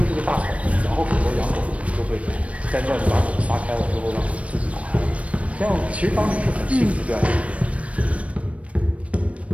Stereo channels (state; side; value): late; left; 0.064 ms